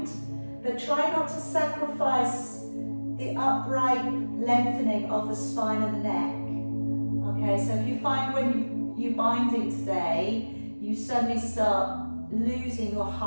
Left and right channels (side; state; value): both; inverted; correlation -1.00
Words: but try not to sacrifice the upright lengthening of the spine and the neck. Okay, so if you find when you're binding today, you suddenly start losing your